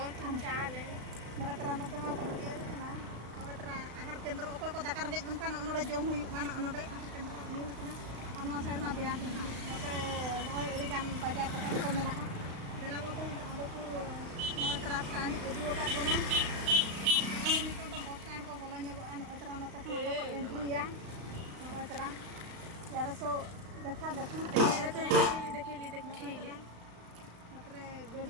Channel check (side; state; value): left; late; 35 ms